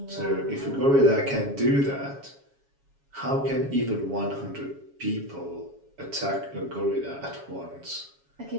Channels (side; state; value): left; late; 7.2 ms